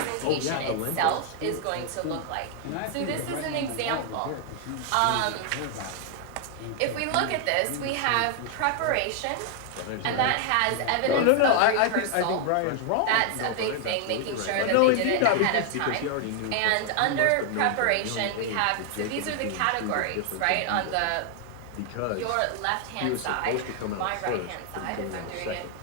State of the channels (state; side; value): different; both; correlation 0.00